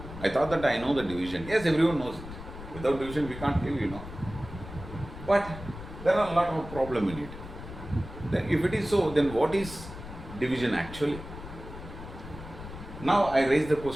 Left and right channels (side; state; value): left; noise; rumble, 12 dB below the sound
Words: I thought that I know the division. Yes, everyone knows it. Without division, we can't live, you know. But there are a lot of problems in it. Then if it is so, then what is division actually? Now I raise the